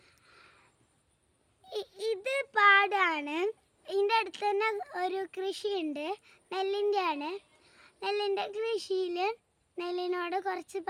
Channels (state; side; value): identical; both; correlation 1.00